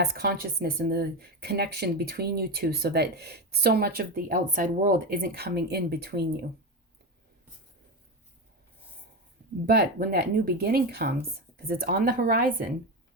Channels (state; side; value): normal; both; correlation 0.16